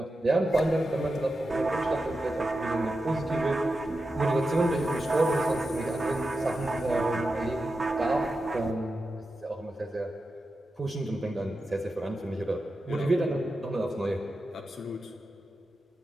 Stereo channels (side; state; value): both; normal; correlation 0.90